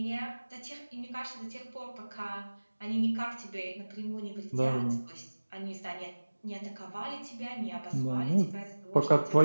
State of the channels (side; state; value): both; inverted; correlation -1.00